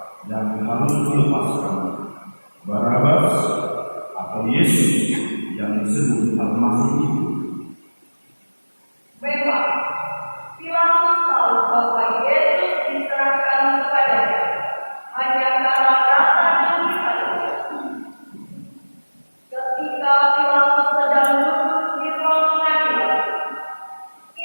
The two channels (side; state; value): both; inverted; correlation -1.00